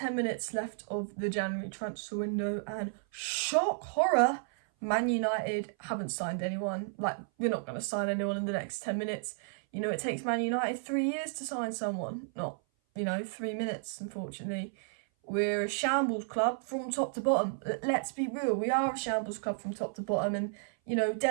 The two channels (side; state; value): left; silent; 56 dB below the other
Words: minutes left of the January transfer window, and shock horror, Man United haven't signed anyone. Like, we're not going to sign anyone in the next 10 minutes. You know, it takes Man United 3 years to sign someone, not, 3 minutes, unfortunately. We're a shambles club from top to bottom. Let's be real, we are a shambles club from top to bottom, and,